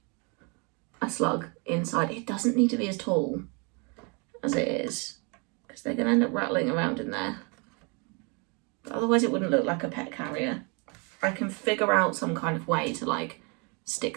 a slug inside. It doesn't need to be as tall as it is, because they're going to end up rattling around in there. But otherwise it wouldn't look like a pet carrier. I can figure out some kind of way to like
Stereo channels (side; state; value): left; quieter; 32.8 dB